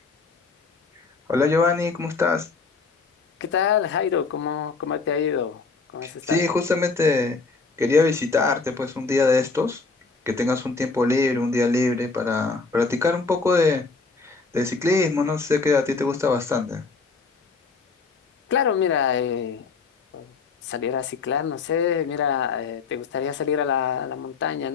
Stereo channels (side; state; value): right; quieter; 4.3 dB